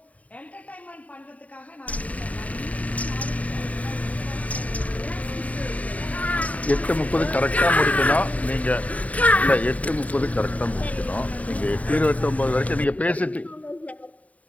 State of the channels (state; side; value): late; right; 0.069 ms